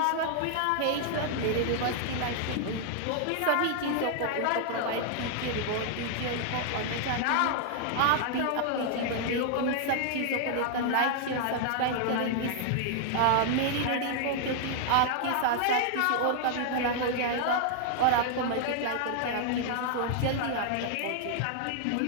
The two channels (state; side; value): different; both; correlation 0.00